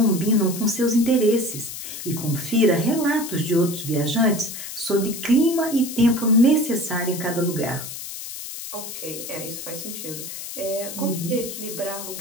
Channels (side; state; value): left; noise; hiss, 9 dB below the sound